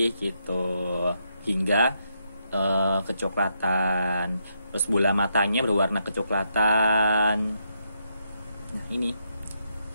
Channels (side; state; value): both; inverted; correlation -0.79